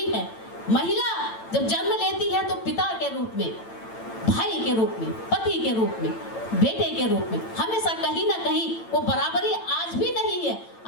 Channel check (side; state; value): right; late; 8.9 ms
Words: है। महिला जब जन्म लेती है तो पिता के रूप में भाई के रूप में, पति के रूप में, बेटे के रूप में, हमेशा कहीं ना कहीं वो बराबरी आज भी नहीं है।